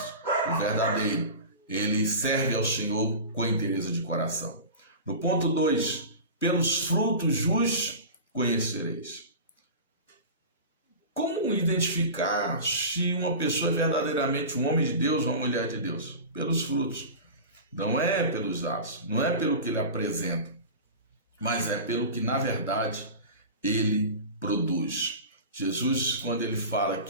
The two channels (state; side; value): inverted; both; correlation -0.31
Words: O verdadeiro, ele serve ao Senhor com interesse de coração. No ponto 2, pelos frutos os conhecereis. Como identificar se uma pessoa é verdadeiramente um homem de Deus ou uma mulher de Deus? Pelos frutos. Não é pelos atos, não é pelo que ele apresenta, mas é pelo que, na verdade, ele produz. Jesus, quando ele fala